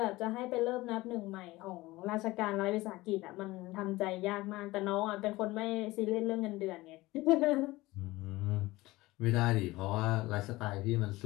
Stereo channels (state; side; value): quieter; right; 19.6 dB